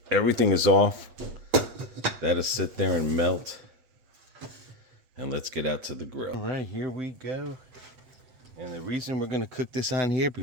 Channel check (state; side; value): late; left; 7.9 ms